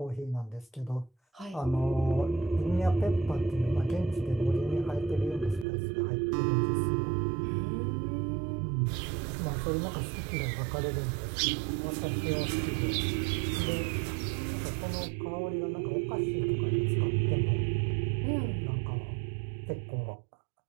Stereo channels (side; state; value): left; drops out; at 5.7 s